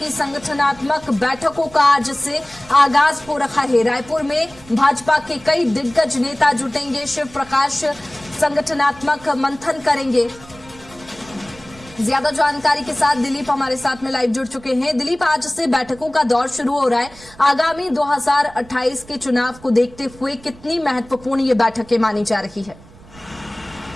संगठनात्मक बैठकों का आज से आगाज हो रहा है। रायपुर में भाजपा के कई दिग्गज नेता जुटेंगे। शिव प्रकाश संगठनात्मक मंथन करेंगे। ज्यादा जानकारी के साथ दिलीप हमारे साथ में लाइव जुड़ चुके हैं। दिलीप, आज से बैठकों का दौर शुरू हो रहा है। आगामी 2028 के चुनाव को देखते हुए कितनी महत्वपूर्ण ये बैठकें मानी जा रही है?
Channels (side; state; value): right; noise; rumble, 22 dB below the sound